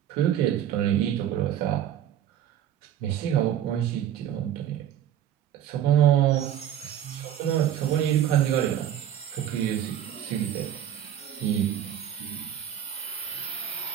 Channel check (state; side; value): quieter; left; 10.5 dB